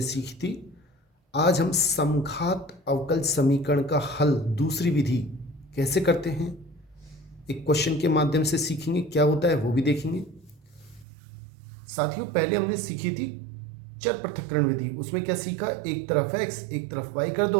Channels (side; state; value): left; drops out; at 11.1 s